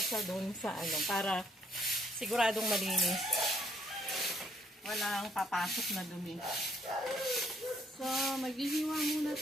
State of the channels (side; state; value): both; normal; correlation 0.67